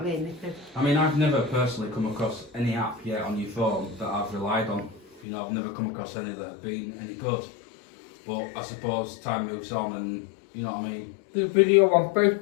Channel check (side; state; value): right; drops out; at 5.2 s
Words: mean. If I mean, I've never personally come across any app yet on your phone that I've relied on. You know, I've never come across any that have been any good. But I suppose time moves on and, you know what I mean? The video on